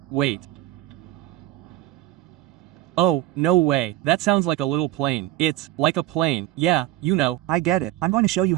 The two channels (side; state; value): left; quieter; 15.7 dB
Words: Oh, no way. That sounds like a little plane. It's like a plane. Yeah, you know. I get it. I'm going to show you